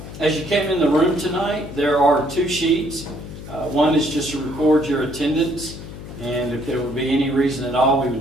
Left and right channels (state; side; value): noise; left; hum, 12 dB below the sound